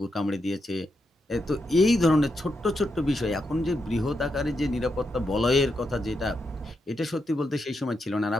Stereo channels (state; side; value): normal; both; correlation 0.84